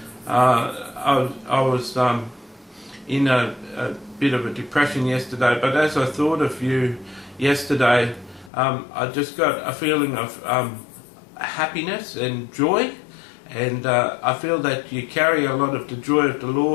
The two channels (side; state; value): right; drops out; at 8.5 s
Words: was in a bit of a depression yesterday, but as I thought of you yesterday, I just got a feeling of happiness and joy, and I feel that you carry a lot of the joy of the